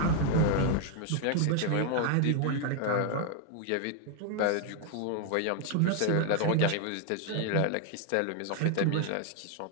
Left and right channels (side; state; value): both; different; correlation 0.00